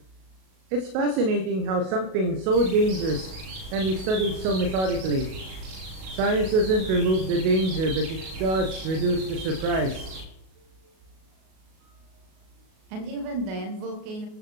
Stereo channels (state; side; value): late; left; 37 ms